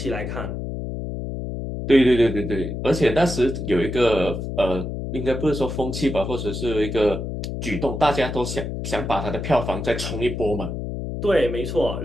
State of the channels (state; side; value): noise; left; hum, 5 dB below the sound